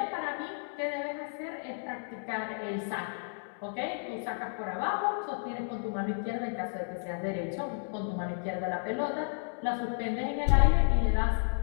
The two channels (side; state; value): right; silent; digital silence